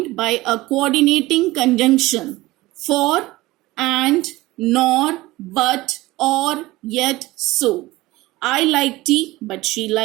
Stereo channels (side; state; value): left; quieter; 19.1 dB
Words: by a coordinating conjunction. For, and, nor, but, or, yet, so. I like tea, but she